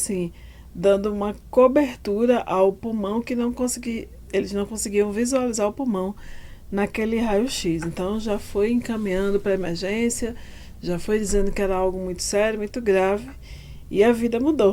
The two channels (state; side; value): identical; both; correlation 1.00